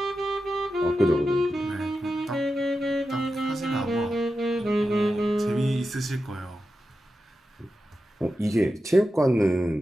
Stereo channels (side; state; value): both; normal; correlation 0.90